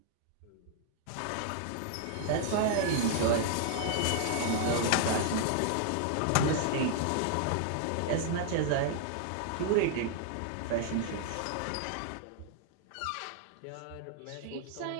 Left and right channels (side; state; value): both; different; correlation 0.00